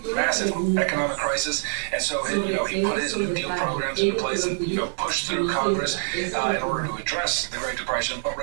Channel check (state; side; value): silent; left; 59 dB below the other